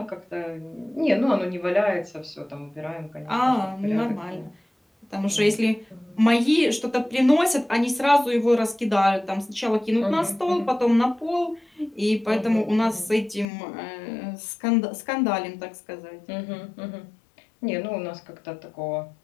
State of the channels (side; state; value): right; drops out; at 13.5 s